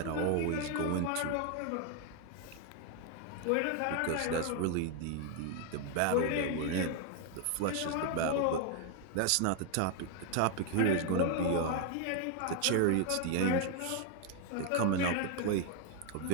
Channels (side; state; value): both; different; correlation 0.00